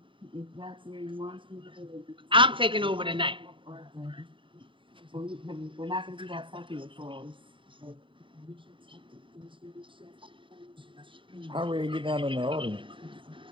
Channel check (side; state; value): left; late; 0.25 ms